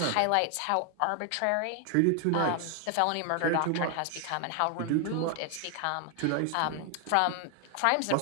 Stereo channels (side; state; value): both; different; correlation 0.00